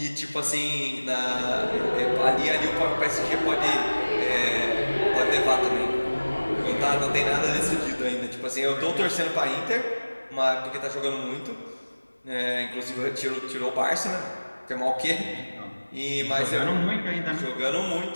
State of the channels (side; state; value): both; inverted; correlation -1.00